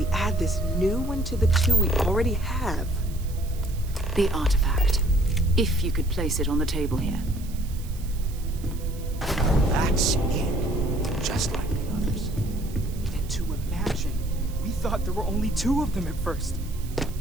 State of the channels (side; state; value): right; noise; hiss, 19 dB below the sound